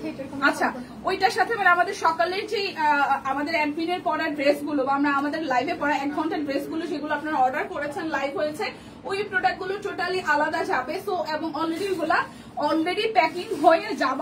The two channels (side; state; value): both; identical; correlation 1.00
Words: আচ্ছা ওইটার সাথে মানে আমাদের সকালের যে আমাদের অ্যাডমিনের পড়া ড্রেসগুলো বা আমরা আমাদের লাইভে পড়া 1 ঘন্টার ড্রেসগুলো সেগুলো আপনারা অর্ডার করেছেন, লাইভ হয়েছে, ওই প্রোডাক্টগুলো টোটালি আলাদা যাবে। সো এবং অলরেডি প্যাকিং হয়ে